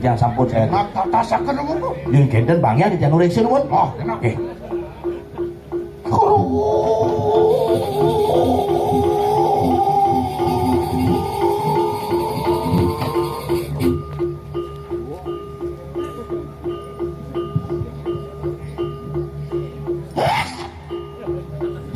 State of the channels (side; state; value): both; identical; correlation 1.00